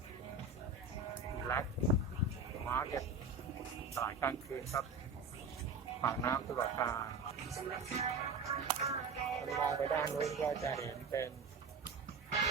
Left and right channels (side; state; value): left; quieter; 4.1 dB